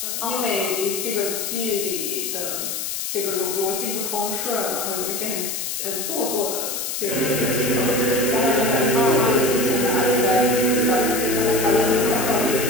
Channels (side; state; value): left; noise; hiss, 3 dB below the sound